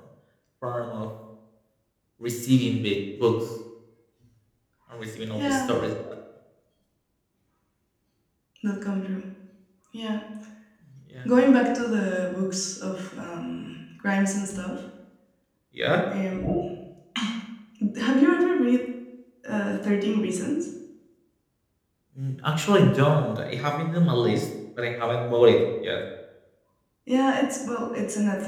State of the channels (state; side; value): identical; both; correlation 1.00